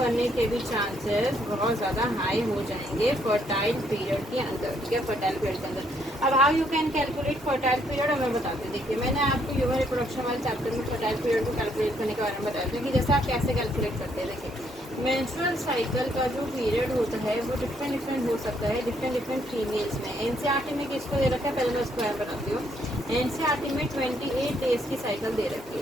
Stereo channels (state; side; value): normal; both; correlation 0.71